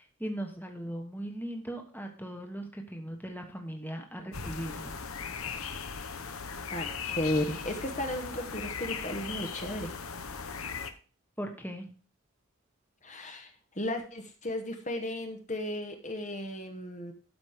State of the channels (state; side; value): normal; both; correlation 0.47